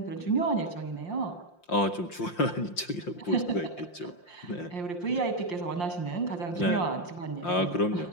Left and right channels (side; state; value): right; late; 5.7 ms